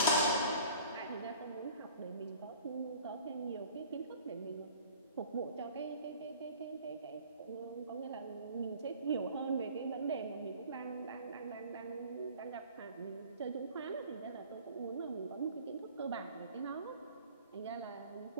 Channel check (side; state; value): both; inverted; correlation -0.46